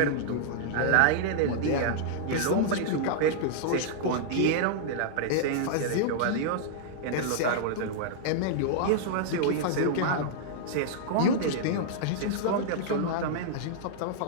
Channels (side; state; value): both; different; correlation -0.02